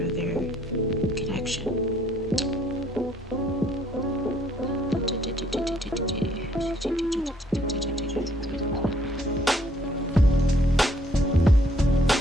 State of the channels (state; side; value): normal; both; correlation 0.65